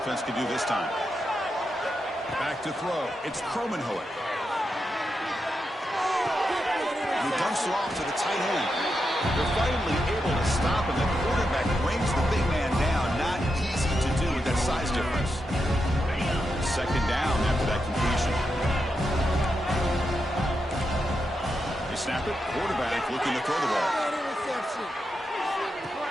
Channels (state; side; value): normal; both; correlation 0.86